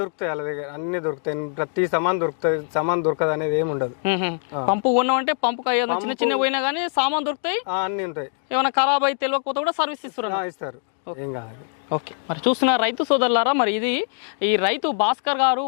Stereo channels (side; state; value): right; silent; 63 dB below the other